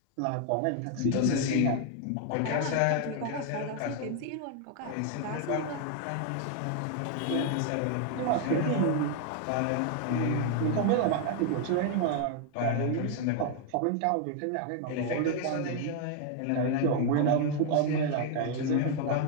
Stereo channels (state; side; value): different; both; correlation 0.00